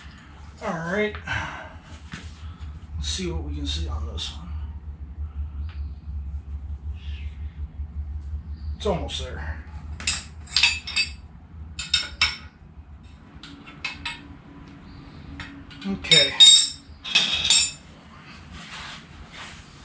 All right. Let's see what we can see on this one. It's almost there. Okay.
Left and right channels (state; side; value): identical; both; correlation 1.00